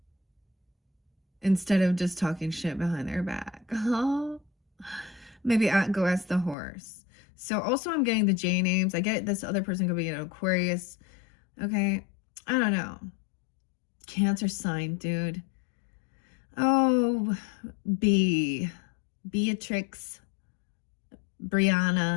Instead of just talking shit behind their back. Oh, maybe go ask the horse. So also I'm getting the J names. I get this other person could be an Aquarius. Okay. I don't know. Cancer sign, dude. Oh, Beatrix,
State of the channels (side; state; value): right; drops out; at 6.6 s